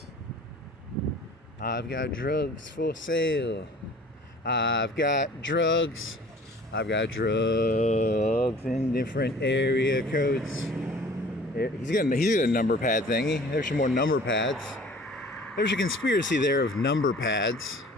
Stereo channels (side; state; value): both; normal; correlation 0.48